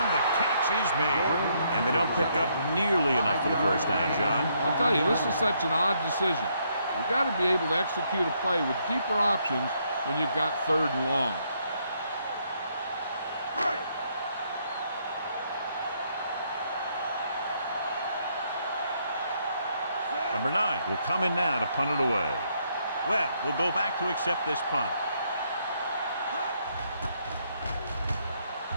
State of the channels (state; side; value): inverted; both; correlation -0.72